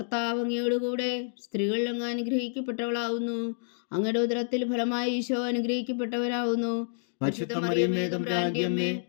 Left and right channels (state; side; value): silent; right; digital silence